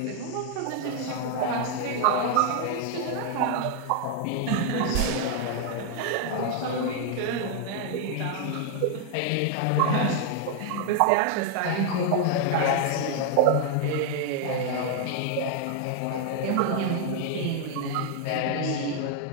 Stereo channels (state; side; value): different; both; correlation 0.00